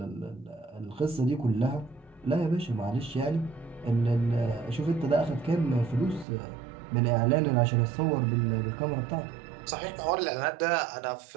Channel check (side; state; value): left; drops out; at 6.2 s